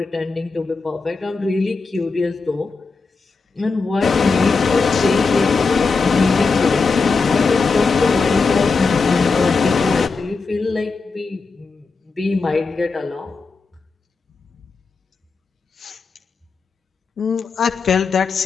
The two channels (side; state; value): right; quieter; 4.4 dB